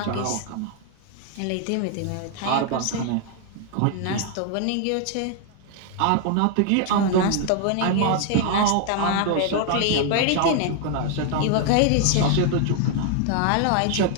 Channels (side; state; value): both; different; correlation 0.00